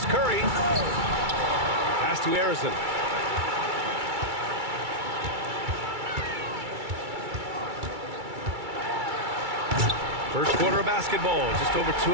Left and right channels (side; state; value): left; late; 2.3 ms